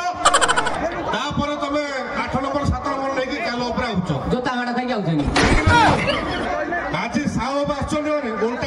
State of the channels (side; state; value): both; identical; correlation 1.00